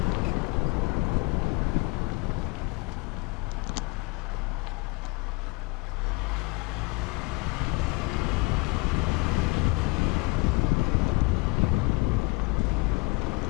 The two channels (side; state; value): right; quieter; 25.4 dB